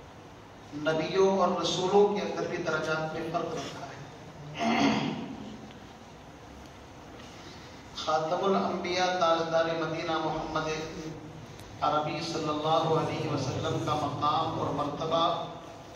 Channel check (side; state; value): both; identical; correlation 1.00